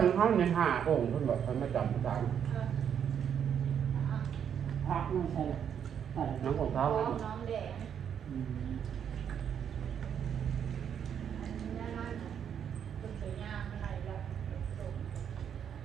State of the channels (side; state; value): left; quieter; 8.4 dB